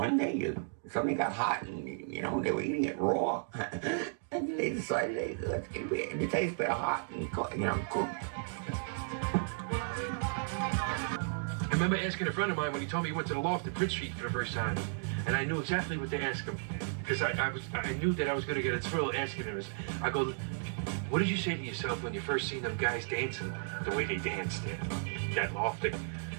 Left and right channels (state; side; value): silent; left; digital silence